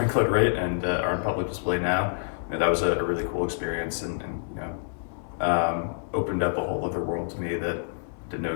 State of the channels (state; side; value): silent; right; 60 dB below the other